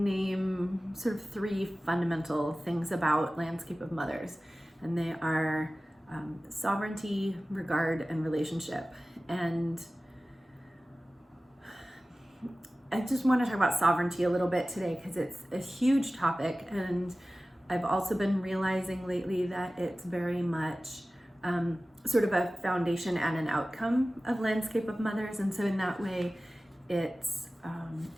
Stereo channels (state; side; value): normal; both; correlation 0.96